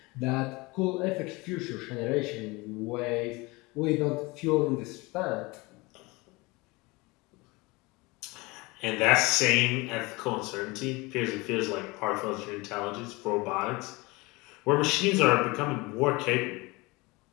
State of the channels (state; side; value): quieter; right; 24.2 dB